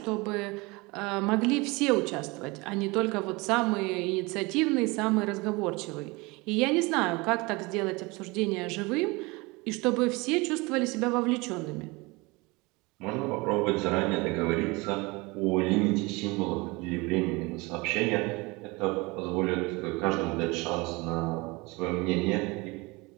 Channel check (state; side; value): quieter; left; 25.0 dB